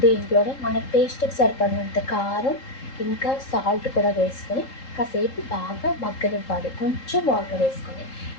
దీంట్లోనే మన టేస్ట్కి సరిపడినంత కారం ఇంకా సాల్ట్ కూడా వేసుకొని కాసేపు బాగా మగ్గనివ్వాలి. కొంచెం వాటర్ వేసుకొని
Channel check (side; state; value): right; late; 3.8 ms